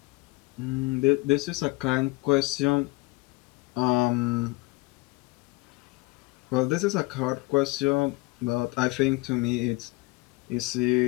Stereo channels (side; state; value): right; quieter; 24.0 dB